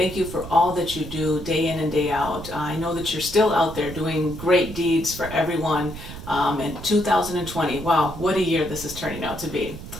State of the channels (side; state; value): right; noise; rumble, 12 dB below the sound